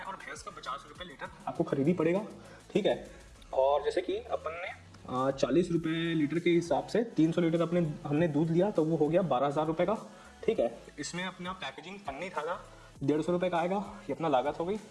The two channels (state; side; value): identical; both; correlation 1.00